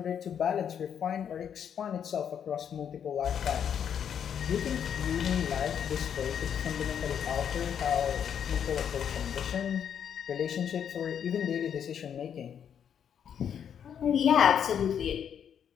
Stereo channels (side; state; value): right; quieter; 8.4 dB